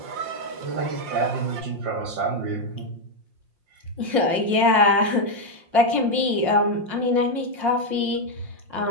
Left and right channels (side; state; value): left; late; 5.6 ms